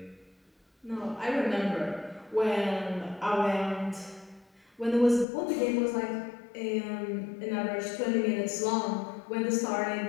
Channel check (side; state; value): right; drops out; at 5.2 s